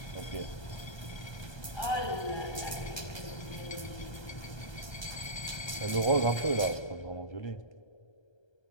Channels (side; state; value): right; late; 1.3 ms